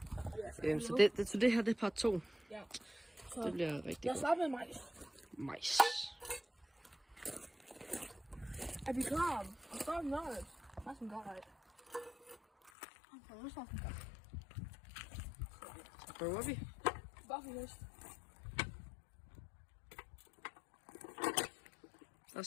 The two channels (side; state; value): right; drops out; at 12.7 s